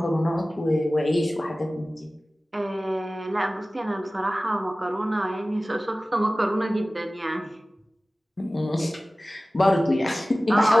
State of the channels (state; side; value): normal; both; correlation 0.97